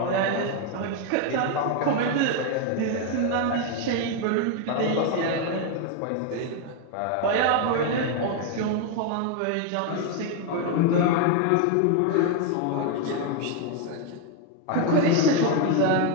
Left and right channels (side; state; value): both; different; correlation 0.01